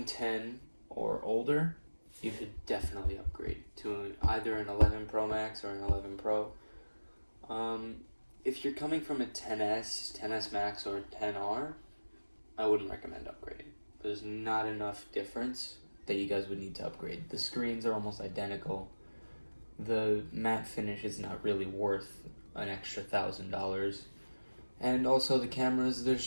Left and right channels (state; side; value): inverted; both; correlation -1.00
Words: 10 or older, you should definitely upgrade to either an 11 Pro Max or an 11 Pro. If you're coming from a 10S, 10S Max, or 10R, I wouldn't recommend upgrading. There's not enough difference that you guys would need to upgrade. The screens are almost identical. The matte finish is not really worth an extra $1,000. And also the cameras, there's